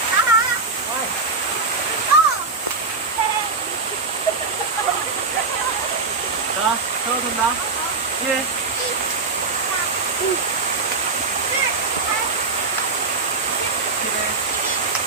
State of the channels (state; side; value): quieter; left; 4.1 dB